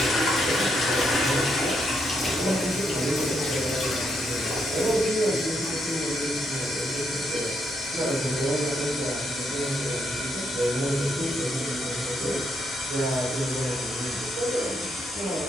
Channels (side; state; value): left; noise; hum, 28 dB below the sound